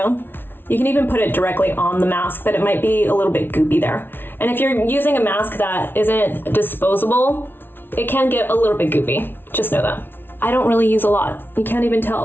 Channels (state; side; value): late; right; 0.10 ms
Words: You can even put it directly on the mask, but it might be a little bit goopy there. And if you're using a mask that isn't disposable, it can get a little bit goopy. Just know that. I don't really use a lot. You can't even